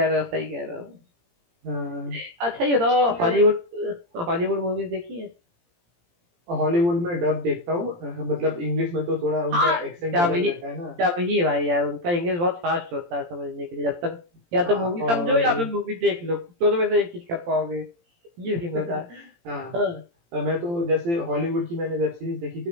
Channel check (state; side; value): late; left; 17 ms